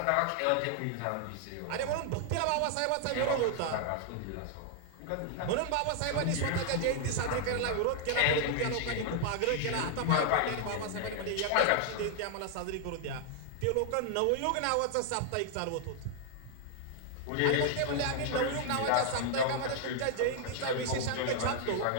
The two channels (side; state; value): both; different; correlation 0.00